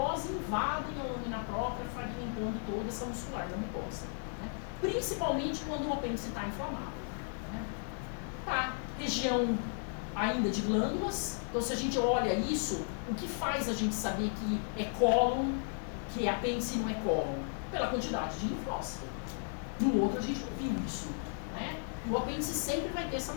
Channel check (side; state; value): right; silent; 55 dB below the other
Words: invadem a lâmina própria, fragmentando toda essa muscular da mucosa, né? Principalmente quando o apêndice está inflamado, né? Tá, região ainda de glândulas. Então, se a gente olha isso, o que faz a gente saber que é cólon, que é apêndice e não é cólon? Pela quantidade de linfócito. No outro, a gente não viu isso, né? E o apêndice sempre vai ter essa